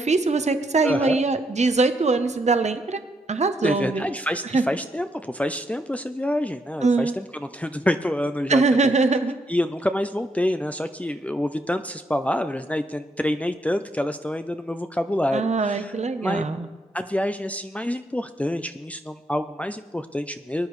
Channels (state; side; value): normal; both; correlation 0.76